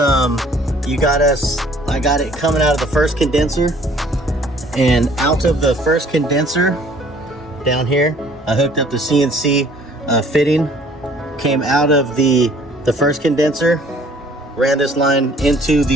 got it coming out of the first condenser, and out of the first condenser down here I hooked up the CNC fitting, came out of the first condenser, ran this line into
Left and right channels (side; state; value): both; normal; correlation 0.56